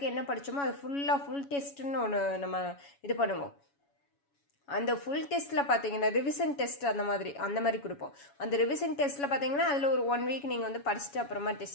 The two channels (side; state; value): right; late; 7.1 ms